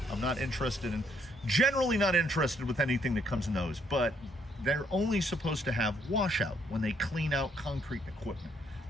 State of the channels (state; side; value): normal; both; correlation 0.69